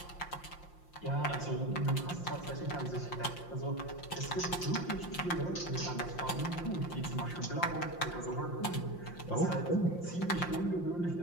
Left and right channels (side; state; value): right; late; 5.7 ms